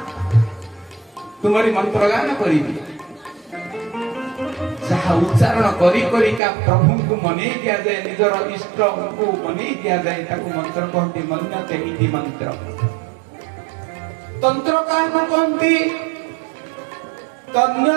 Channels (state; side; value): drops out; left; at 6.4 s